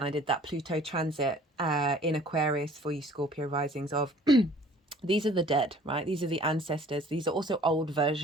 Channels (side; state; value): both; normal; correlation 0.52